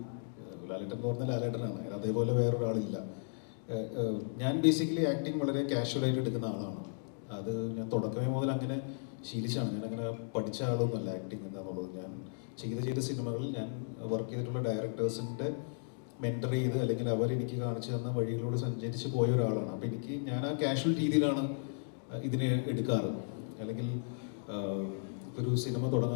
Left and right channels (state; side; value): silent; right; digital silence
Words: ലാലേട്ടൻ എന്ന് പറഞ്ഞാൽ ലാലേട്ടനാണ്, അതേപോലെ വേറൊരാളില്ല. ഞാൻ ബേസിക്കലി ആക്ടിങ് വളരെ കാഷ്വലായിട്ട് എടുക്കുന്ന ആളാണ്. അത് ഞാൻ തുടക്കമേ മുതൽ അങ്ങനെ ശീലിച്ചാണ്. ഞാൻ അങ്ങനെ പഠിച്ച ആളൊന്നുമല്ല ആക്ടിങ് എന്താണെന്നുള്ളത്. ഞാൻ ചെയ്ത സിനിമകളിൽ ഞാൻ വർക്ക് ചെയ്തിട്ടുള്ള ഡയറക്ടേഴ്സിൻ്റെ മെൻറ്റർ ചെയ്ത് അല്ലെങ്കിൽ അവരെനിക്ക് കാണിച്ചു തന്ന വഴികളിലൂടെ സഞ്ചരിച്ച് പോയ ഒരാളാണ്. അപ്പോൾ ഞാൻ ആ കാഷ്വൽ രീതിയിലാണ് ഇതിനെ എടുക്കാറ്. അല്ലെങ്കിൽ ഒരു സിനിമ